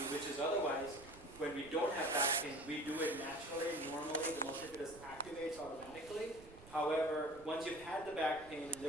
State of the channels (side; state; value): right; noise; rumble, 19 dB below the sound